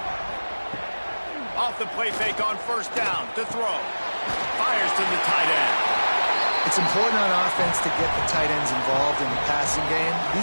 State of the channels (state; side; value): inverted; both; correlation -1.00